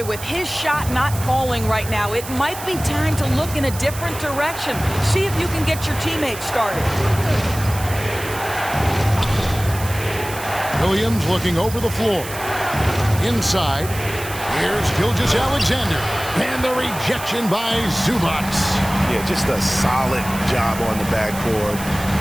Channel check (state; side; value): noise; right; hiss, 12 dB below the sound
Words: with his shot not falling right now, it might be time to look in a different direction. See if you can get your teammates started. Williams looking over the floor. Inside, here's Gilgeous-Alexander. And the rejection by Zubac. Yeah, just a solid job on the backboard.